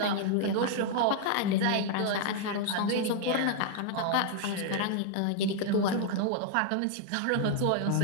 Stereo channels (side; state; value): both; different; correlation 0.00